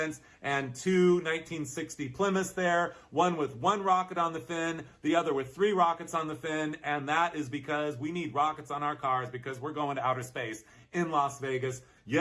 and two 1960 Plymouths there, one with one rocket on the fin, the other with three rockets on the fin, and that is because we need rockets on our cars because we're going to outer space in Las Vegas.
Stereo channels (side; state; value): both; identical; correlation 1.00